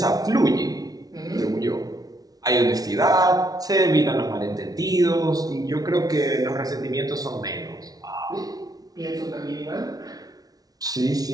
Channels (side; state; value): left; late; 0.18 ms